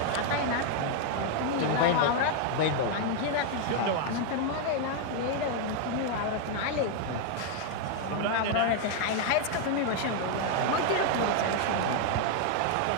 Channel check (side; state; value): both; different; correlation 0.00